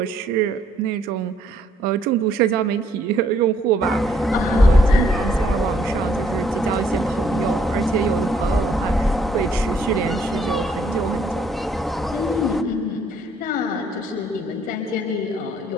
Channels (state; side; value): normal; both; correlation 0.67